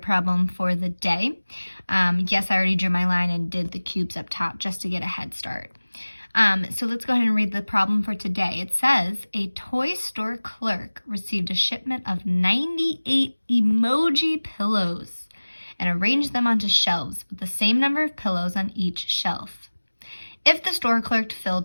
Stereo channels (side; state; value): both; inverted; correlation -1.00